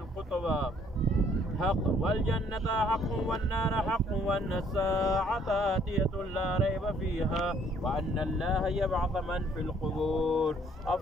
حق والجنة حق والنار حق وأن الساعة آتية لا ريب فيها وأن الله يبعث من في القبور.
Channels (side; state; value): both; normal; correlation 0.63